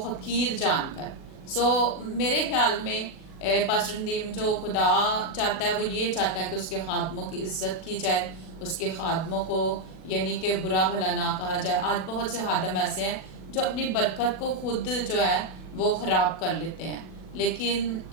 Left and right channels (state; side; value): late; right; 37 ms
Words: جان کر. سو میرے خیال میں پاسٹر ندیم جو خدا چاہتا ہے وہ یہ چاہتا ہے کہ اس کے خادموں کی عزت کی جائے، اس کے خادموں کو یعنی کہ برا بھلا نہ کہا جائے. آج بہت سے خادم ایسے ہیں جو اپنی برکت کو خود جو ہے وہ خراب کر لیتے ہیں، لیکن